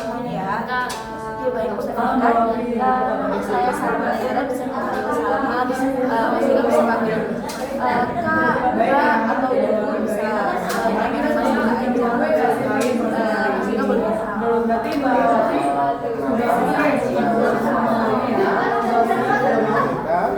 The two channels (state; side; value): identical; both; correlation 1.00